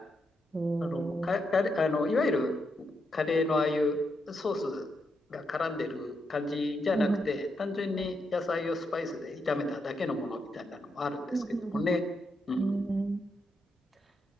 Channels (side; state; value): both; normal; correlation 0.82